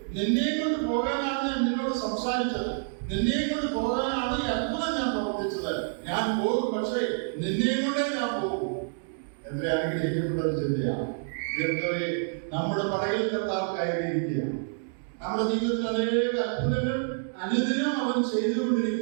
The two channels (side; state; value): left; silent; digital silence